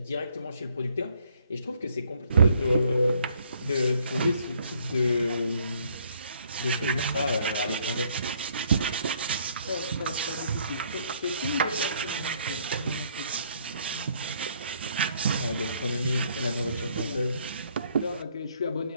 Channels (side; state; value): both; inverted; correlation -0.66